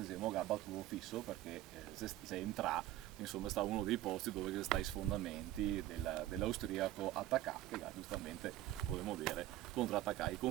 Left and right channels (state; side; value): quieter; left; 14.8 dB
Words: esempio ha battuto fisso perché se entra, insomma sta uno dei posti dove sta i sfondamenti dell'austriaco attaccato, che giustamente potremmo dire contrattaccare i